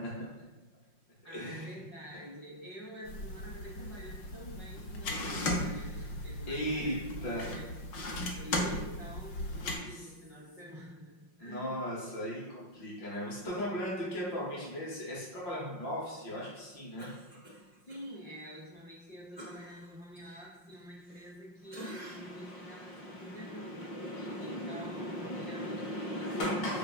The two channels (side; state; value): right; late; 5.6 ms